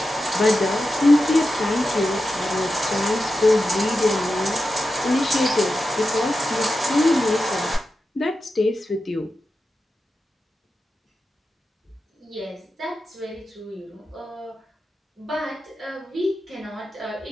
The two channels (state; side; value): normal; both; correlation 0.91